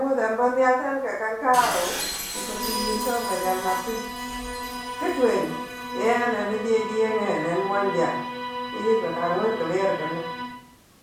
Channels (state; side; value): identical; both; correlation 1.00